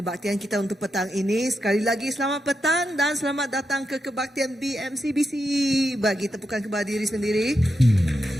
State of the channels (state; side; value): normal; both; correlation 0.86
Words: kita untuk petang ini. Sekali lagi selamat petang dan selamat datang ke kebaktian BMCBC. Bagi tepukan kepada diri sendiri.